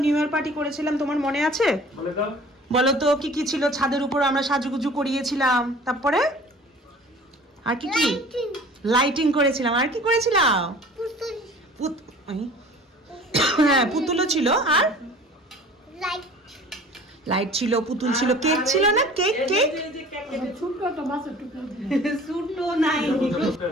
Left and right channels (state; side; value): normal; both; correlation 0.46